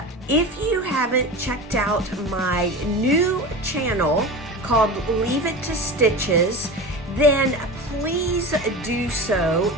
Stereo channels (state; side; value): normal; both; correlation 0.29